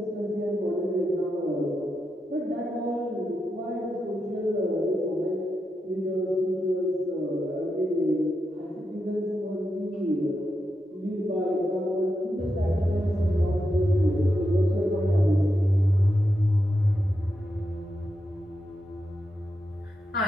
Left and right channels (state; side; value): normal; both; correlation 0.86